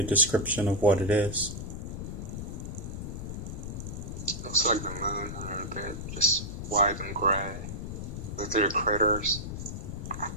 description of what it is. Looks like the moon a little bit, just white and gray, with little craters.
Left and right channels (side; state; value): left; noise; rumble, 6 dB below the sound